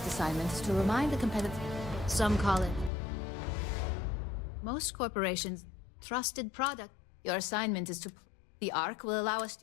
assignment is to remind the competitive... Some call it... Most corporations... Trusted product. Your assignment is to... The Ark will allow us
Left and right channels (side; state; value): right; drops out; at 2.9 s